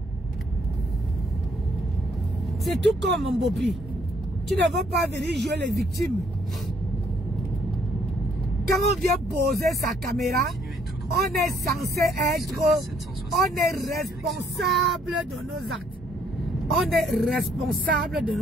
C'est tout comme, mon Bopi. Tu ne veux pas venir jouer les victimes. Quand on vient poser sa caméra, on est censé être... On est responsable de nos actes. On est responsable de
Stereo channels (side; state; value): both; normal; correlation 0.67